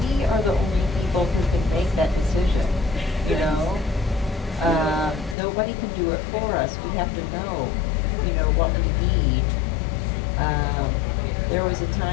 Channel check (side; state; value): right; drops out; at 5.4 s